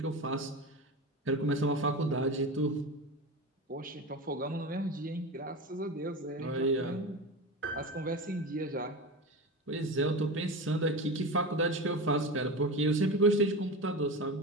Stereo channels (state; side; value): normal; both; correlation 0.25